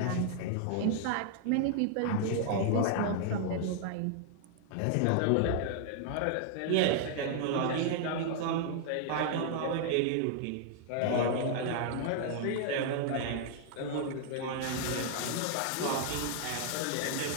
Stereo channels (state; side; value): different; both; correlation 0.00